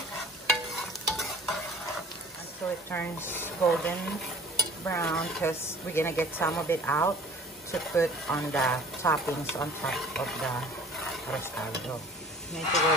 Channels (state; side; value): normal; both; correlation 0.48